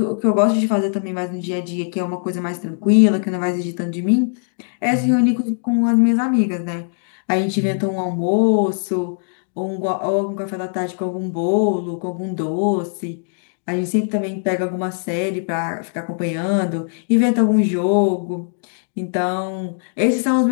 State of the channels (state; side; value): silent; right; digital silence